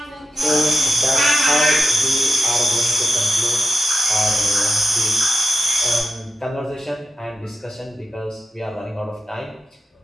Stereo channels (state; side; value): normal; both; correlation 0.88